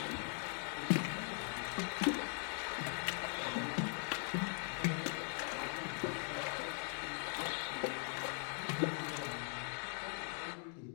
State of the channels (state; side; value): silent; right; 50 dB below the other